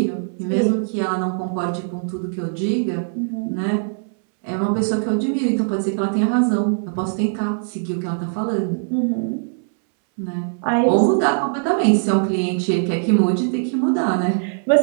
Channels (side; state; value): left; silent; 65 dB below the other